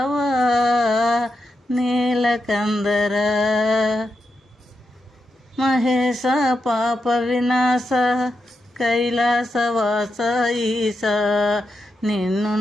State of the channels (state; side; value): normal; both; correlation 0.86